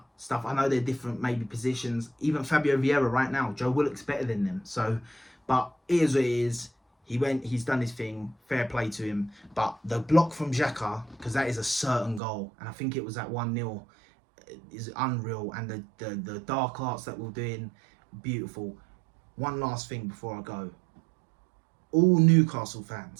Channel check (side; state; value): left; drops out; at 12.2 s